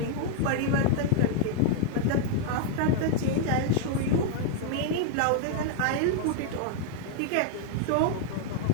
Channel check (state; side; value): different; both; correlation -0.01